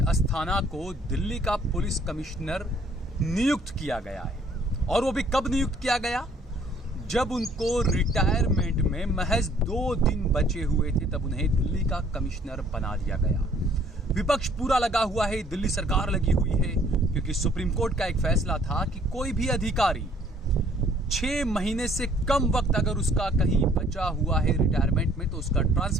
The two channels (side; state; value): both; normal; correlation 0.60